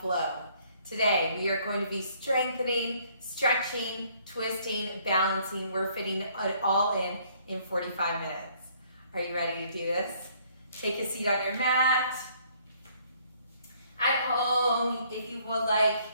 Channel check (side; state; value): both; inverted; correlation -0.63